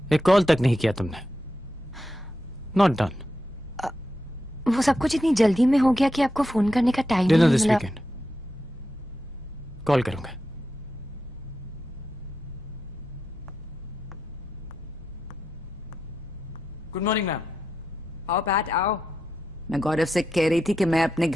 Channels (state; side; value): normal; both; correlation 0.86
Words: एक call तक नहीं किया तुमने। Not done. वो सब कुछ इतनी जल्दी में हो गया कि आपको फोन करने का टाइम डिनर नहीं दिस मिला। वीकेंड कॉल करूंगा। Good morning ma'am. आओ पैट आओ। मैं गौरव से कह रही थी कि मैं अपने